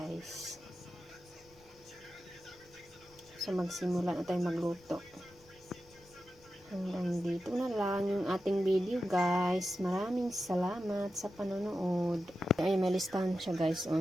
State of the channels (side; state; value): left; noise; rumble, 27 dB below the sound